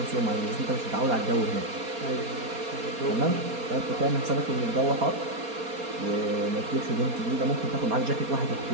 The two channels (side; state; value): left; late; 4.3 ms